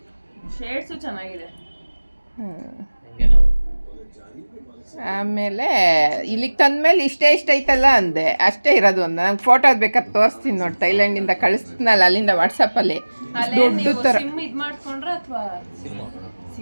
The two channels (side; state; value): both; inverted; correlation -1.00